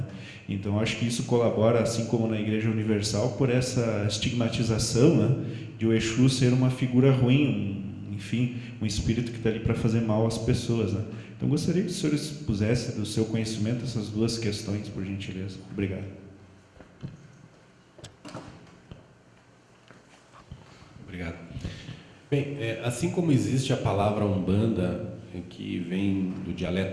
Então acho que isso colabora, assim como na Igreja Universal, por essa estigmatização, né, de o Exu ser uma figura ruim, enfim, um espírito que está ali para fazer mal às pessoas, né? Então gostaria que o senhor expusesse do seu conhecimento essas duas questões, por gentileza. Obrigado. Obrigado. Bem, assim como existe a palavra Umbanda, que vem do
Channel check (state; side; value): identical; both; correlation 1.00